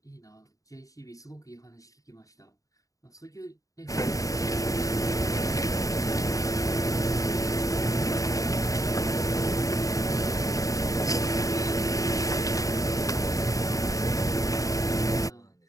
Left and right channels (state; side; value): late; right; 0.16 ms